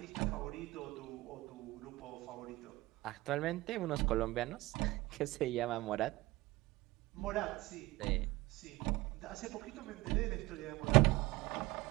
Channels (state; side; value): quieter; left; 19.9 dB